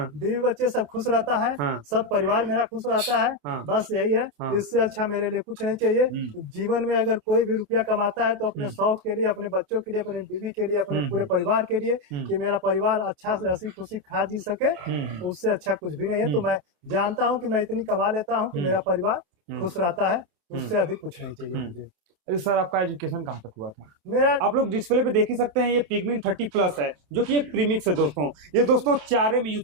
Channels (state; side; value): late; left; 28 ms